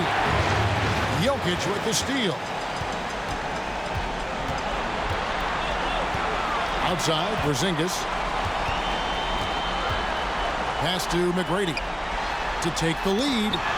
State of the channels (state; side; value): identical; both; correlation 1.00